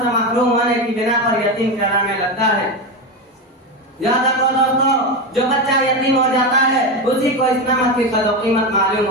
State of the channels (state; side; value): normal; both; correlation 0.16